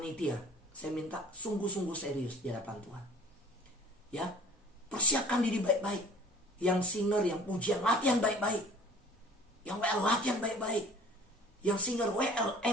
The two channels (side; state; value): both; normal; correlation 0.48